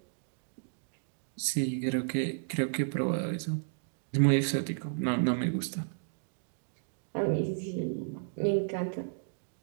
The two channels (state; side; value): silent; left; digital silence